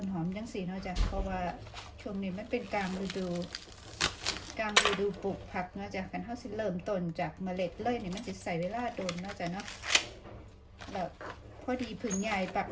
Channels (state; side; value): identical; both; correlation 1.00